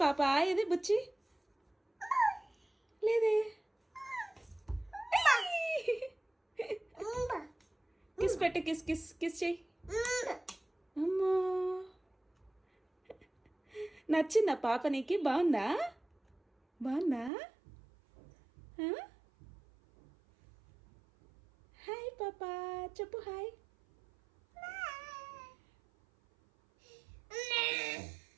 పాప ఏది బుచ్చి లేదే. కిస్ పెట్టు కిస్ కిస్ కిస్ చెయ్యి. అమ్మా నచ్చిందా పాప నీకు? బాగుందా బాగుందా? హాయ్ పాప చెప్పు హాయ్.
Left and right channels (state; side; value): drops out; left; at 17.3 s